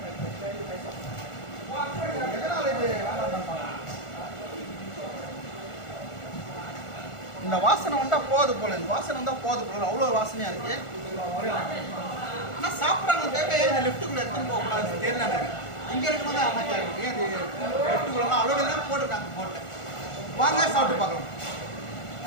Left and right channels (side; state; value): right; late; 1.4 ms